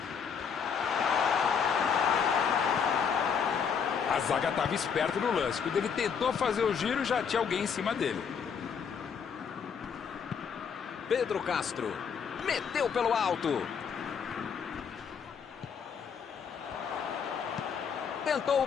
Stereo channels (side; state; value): right; quieter; 6.7 dB